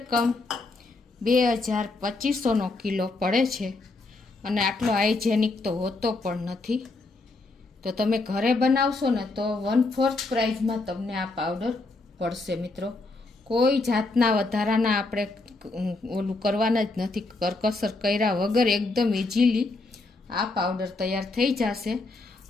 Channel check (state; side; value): quieter; right; 3.3 dB